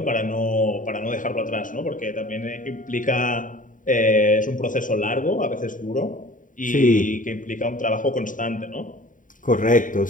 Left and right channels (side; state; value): right; late; 0.38 ms